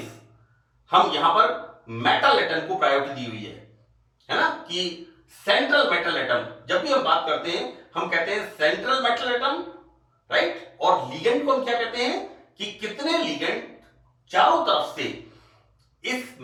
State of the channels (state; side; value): identical; both; correlation 1.00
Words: हम यहां पर मेटल एटम को प्रायोरिटी दी हुई है ना, कि सेंट्रल मेटल एटम, जब भी हम बात करते हैं हम कहते हैं सेंट्रल मेटल एटम, राइट। और लिगेंड को हम क्या कहते हैं कि कितने लिगेंड चारों तरफ से इस